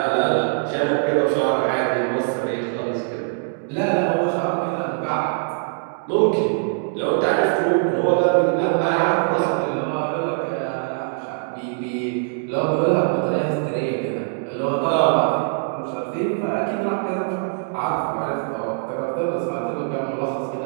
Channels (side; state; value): left; silent; digital silence